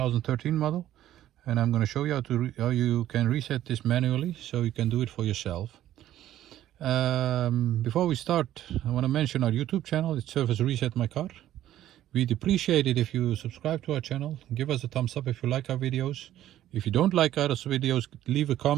model, and I'm going to show you how you can reset this manually so you can do it for yourself. Before we start, I want to mention our YouTube channel. It's Service Reset My Car. We'd appreciate it if you subscribe to our channel. Give us a thumbs up if you like our videos. If you don't like our videos, leave a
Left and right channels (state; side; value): quieter; left; 12.8 dB